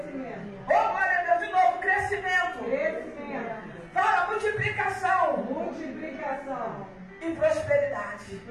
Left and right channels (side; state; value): both; identical; correlation 1.00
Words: Oh, glória a Deus, de novo, crescimento. Crescimento. Fala multiplicação. Multiplicação. E prosperidade.